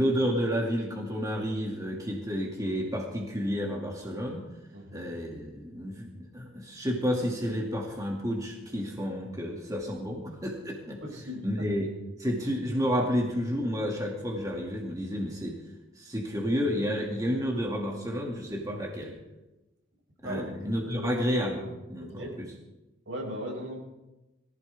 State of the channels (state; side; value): normal; both; correlation 0.70